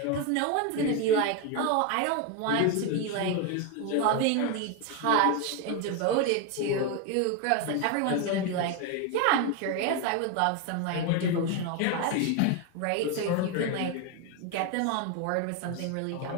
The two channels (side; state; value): both; different; correlation 0.02